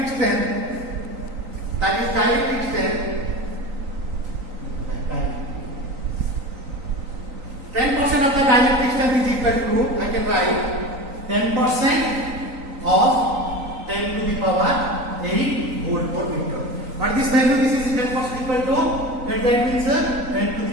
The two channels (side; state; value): left; late; 3.9 ms